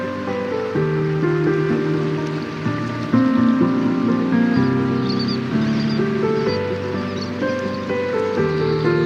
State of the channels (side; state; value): both; identical; correlation 1.00